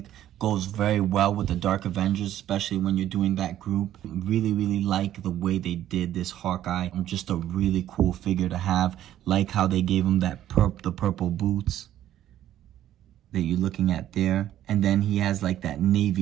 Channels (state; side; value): quieter; left; 12.1 dB